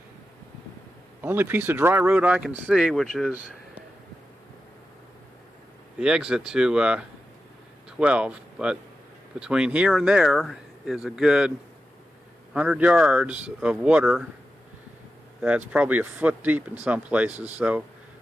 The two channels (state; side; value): normal; both; correlation 0.91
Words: only piece of dry road I can see, which is the exit to 12. But between here and there is a good 100 yards of water that's probably a foot deep in some places, so